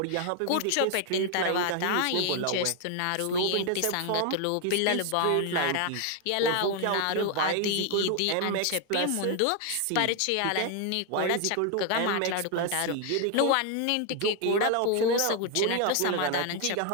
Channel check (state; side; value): different; both; correlation 0.00